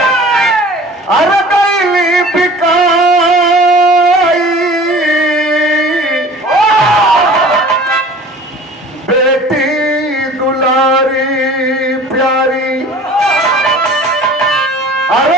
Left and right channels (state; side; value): normal; both; correlation 0.45